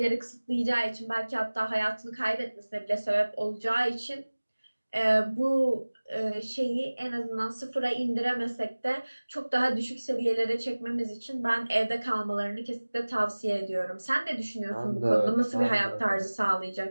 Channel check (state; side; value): inverted; both; correlation -1.00